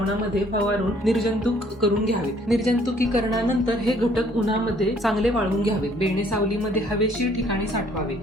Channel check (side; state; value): both; normal; correlation 0.61